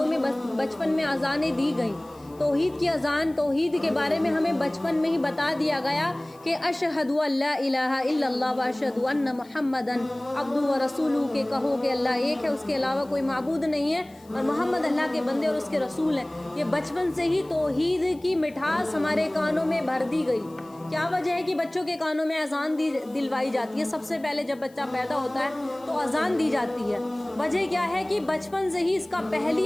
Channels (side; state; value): left; noise; hiss, 28 dB below the sound